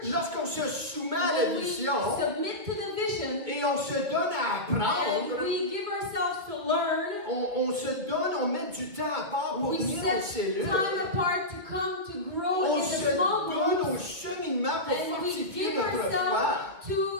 Lorsqu'on se soumet à la When we vision submit to the vision et on se donne à and apprendre, we give ourselves to learn, on se donne, on met du temps à part pour we venir aux set cellules. time apart to come to grow On in se the small donne groups, au cheminement pour and we fortifier give notre foi. ourselves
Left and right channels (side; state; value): left; late; 2.4 ms